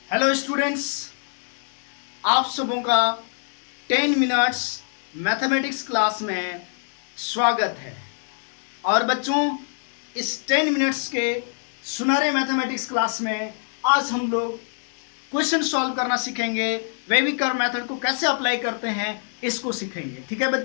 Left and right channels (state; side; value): silent; right; 62 dB below the other